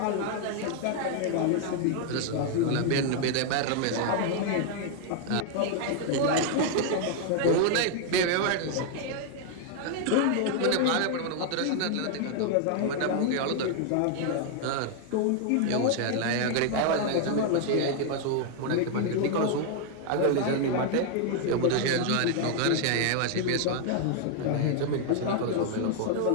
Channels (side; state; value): both; different; correlation 0.00